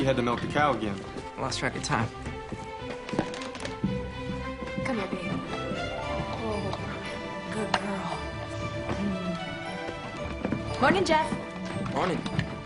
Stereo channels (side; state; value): both; identical; correlation 1.00